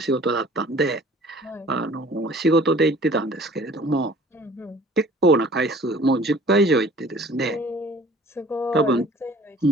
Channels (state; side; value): normal; both; correlation 0.51